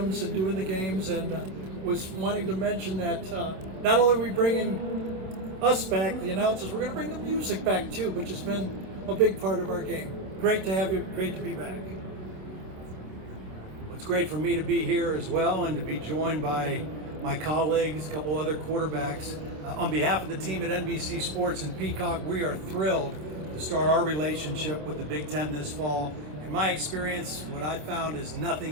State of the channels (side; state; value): left; late; 27 ms